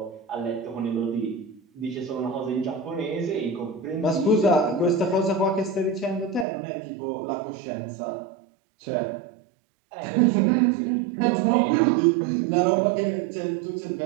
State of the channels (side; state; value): left; drops out; at 6.5 s